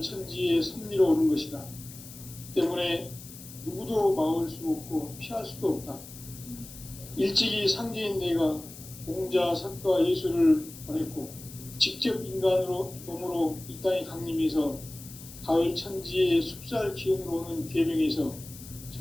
천지의 섭리로 오는 것이다. 때문에 누구도 막을 수 없고 피할 수도 없다. 일찍이 상제인 내가 공자, 석가, 예수를 보냈고 직접 인간으로 몸으로 이 땅에 강림해서 가을 천지의 숲살 기운으로 오는 계명에서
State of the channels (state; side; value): noise; left; hiss, 16 dB below the sound